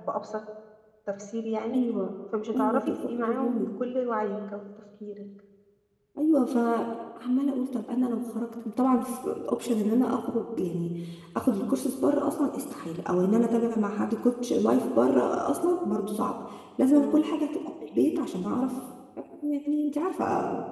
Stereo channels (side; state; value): both; identical; correlation 1.00